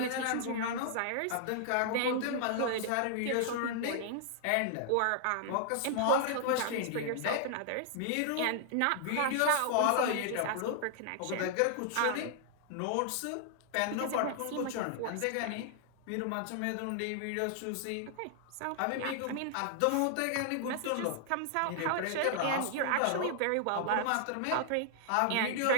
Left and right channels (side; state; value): both; different; correlation 0.00